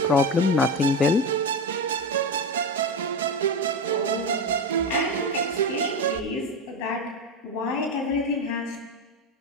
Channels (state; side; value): normal; both; correlation 0.17